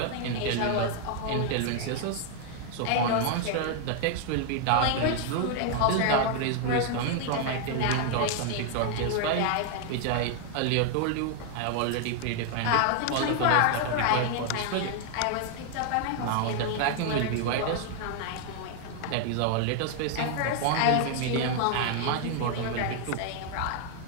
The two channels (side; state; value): both; different; correlation 0.00